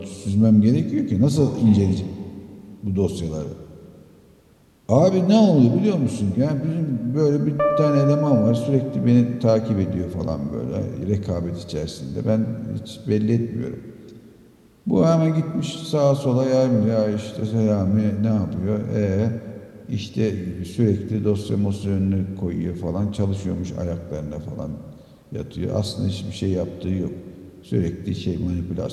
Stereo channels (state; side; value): identical; both; correlation 1.00